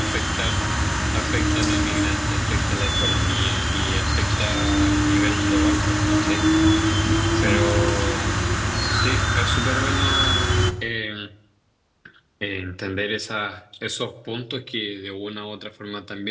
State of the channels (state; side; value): identical; both; correlation 1.00